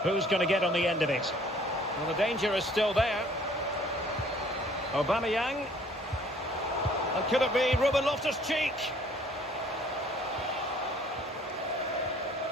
Who's going to get on the end of it? Well, the danger is still there. Aubameyang. And could it be Ruben Loftus-Cheek?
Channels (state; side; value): normal; both; correlation 0.57